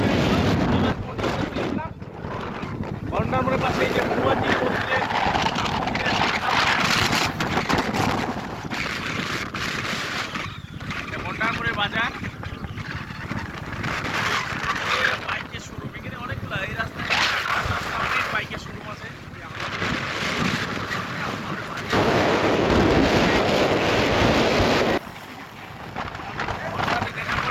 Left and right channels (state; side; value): identical; both; correlation 1.00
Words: গন্ডারমোড়ের পাশে এই যে গন্ডারমোড়ের বাজার, বাইকের শোরুম। এখানে অনেকগুলো এই রাস্তায় অনেক বাইকের শোরুম আছে।